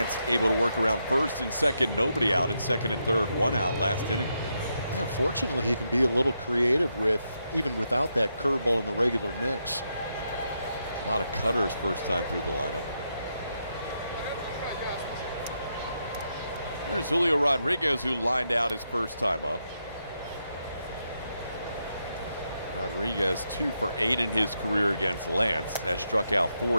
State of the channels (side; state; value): both; inverted; correlation -0.82